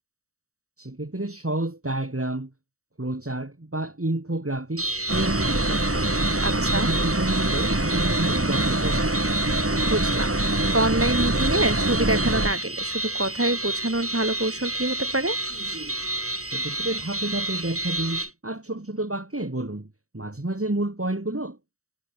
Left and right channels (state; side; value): late; left; 0.65 ms